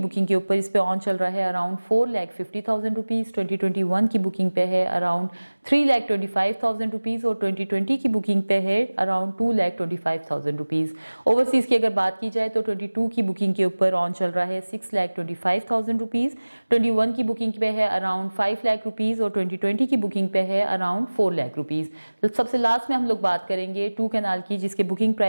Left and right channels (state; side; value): inverted; both; correlation -1.00